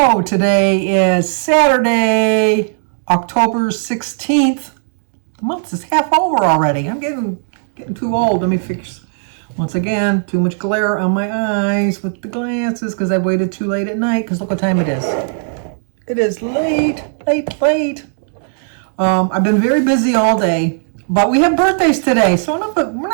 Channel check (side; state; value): left; silent; digital silence